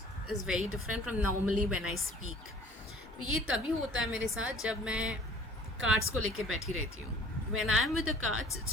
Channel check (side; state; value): both; normal; correlation 0.51